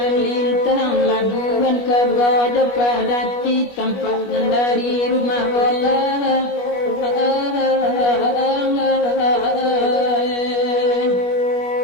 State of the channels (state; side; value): late; right; 21 ms